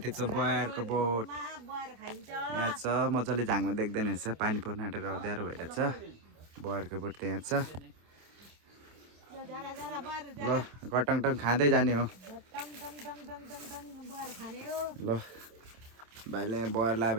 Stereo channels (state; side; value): late; left; 27 ms